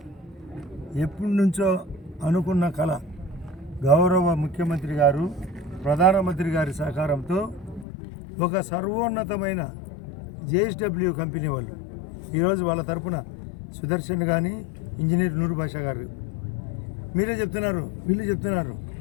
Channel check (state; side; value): drops out; right; at 7.9 s